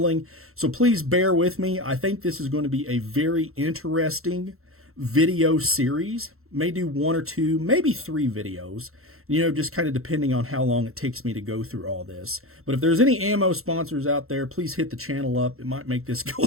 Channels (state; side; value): late; left; 0.62 ms